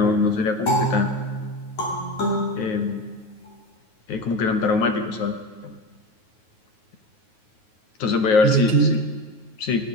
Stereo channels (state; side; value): late; right; 9.4 ms